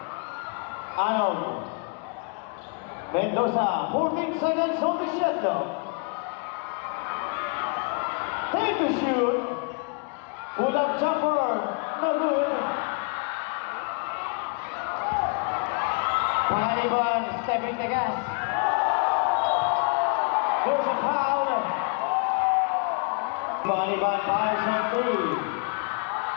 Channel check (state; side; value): quieter; right; 36.3 dB